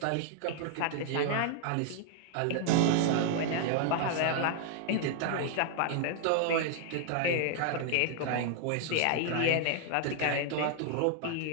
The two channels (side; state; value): both; different; correlation 0.00